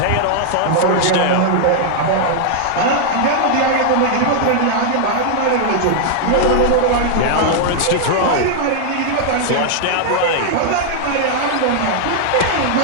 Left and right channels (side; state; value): both; different; correlation -0.01